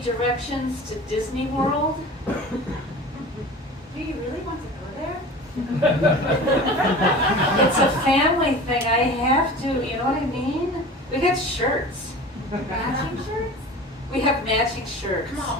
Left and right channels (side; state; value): both; normal; correlation 0.37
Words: directions to Disney World. Do you really want to go there? It's a family thing. I have to, you know what I mean? We got shirts. Matching shirts? We have matching shirts. Come on,